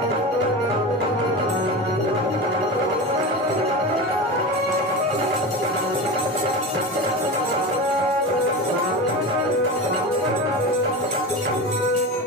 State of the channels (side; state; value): both; normal; correlation 0.26